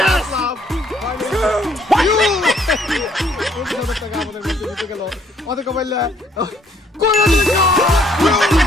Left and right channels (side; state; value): both; normal; correlation 0.65